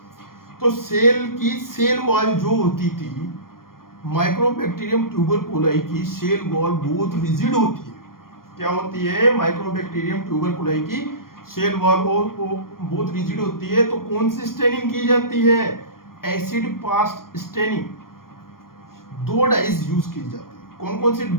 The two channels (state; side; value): late; right; 0.91 ms